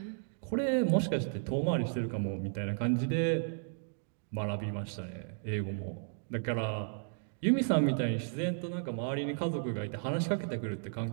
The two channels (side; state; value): left; silent; digital silence